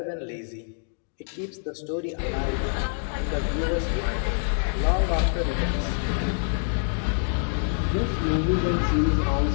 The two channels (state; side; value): silent; right; digital silence